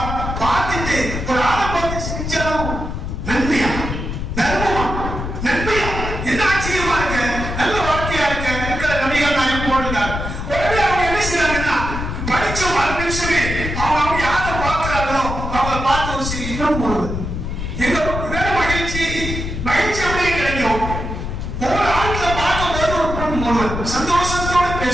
பார்த்துட்டு ஒரு ஆளை பார்த்து சிரிச்சாலும் நன்மையா, தர்மமா, நன்மையா, என்ன ஆச்சரியமா இருக்கு, நல்ல வாழ்க்கையா இருக்கு. நபிகள் நாயகம் போடுகிறார். உடனே அவங்க என்ன செய்யறாங்கன்னா, படிச்ச ஒரு நிமிஷமே அவங்க யாரை பார்க்கிறாங்களோ அவங்க பார்த்து ஒரு சிரிக்கும் போது எங்க மகிழ்ச்சி அப்படியே கிடைக்கும். ஒவ்வொரு ஆட்களை பார்க்கும் போது ஒரு பொன் சந்தோஷத்தோட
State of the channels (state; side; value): noise; left; rumble, 5 dB below the sound